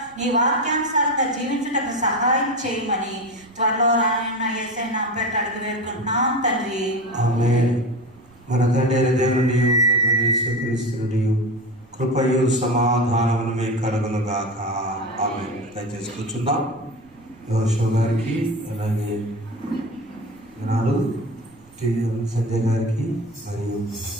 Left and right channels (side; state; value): right; noise; rumble, 29 dB below the sound